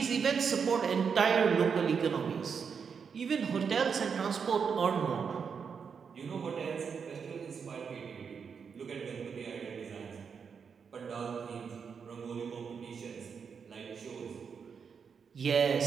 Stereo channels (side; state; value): left; quieter; 6.3 dB